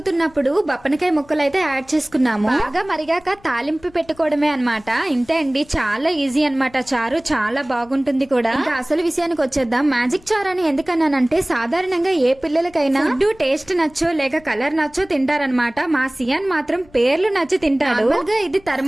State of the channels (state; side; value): noise; left; rumble, 27 dB below the sound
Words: బప్పనకాయ ముక్కలు అయితే యాడ్ చేసుకున్నాము. బాగా మరిగాక తాలింపు పెట్టుకోవడమే అన్నమాట. ఇంతే అండి, చాలా ఈజీ అన్నమాట. చారు చాలా బాగుంటుంది కూడా. ఇంకా అసలు విషయానికి వచ్చేద్దాం. మ్యాజిక్ చారు అని ఎందుకన్నానంటే, సాధారణంగా ఏ పిల్లలకైనా ఫుడ్ టేస్ట్ నచ్చో లేక కలర్ నచ్చో తింటారనమాట. మా సియాన్ మాత్రం పేర్లు నచ్చి తింటాడు. ఇది